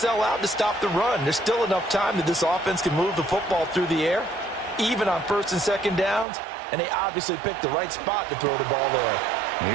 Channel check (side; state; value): left; drops out; at 6.2 s